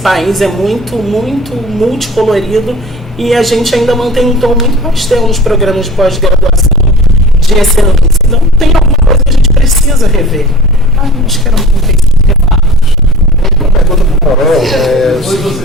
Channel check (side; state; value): both; normal; correlation 0.40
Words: é muito, muito multicolorido, e a gente ainda mantém um tom muito pastel nos programas de pós-graduação de excelência. Então tem alguma coisa que a gente precisa rever. Acho que era um pouco isso. Uma pergunta para o Morel.